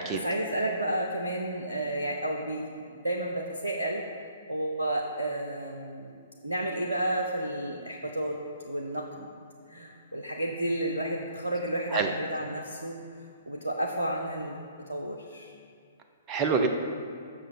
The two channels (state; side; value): inverted; both; correlation -0.61